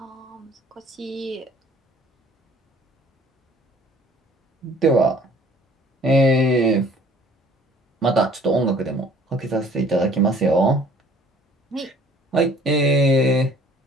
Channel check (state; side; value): normal; both; correlation 0.54